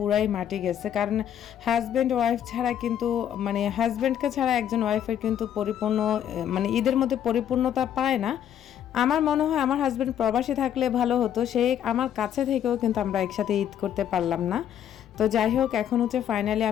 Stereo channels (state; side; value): quieter; right; 9.9 dB